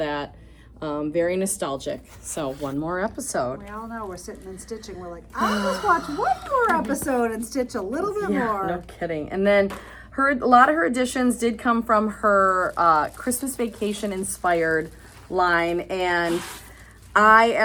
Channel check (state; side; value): identical; both; correlation 1.00